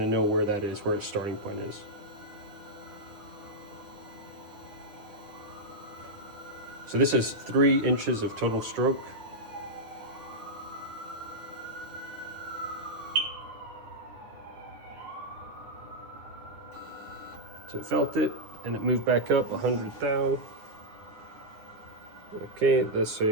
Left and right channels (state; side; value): late; left; 9.8 ms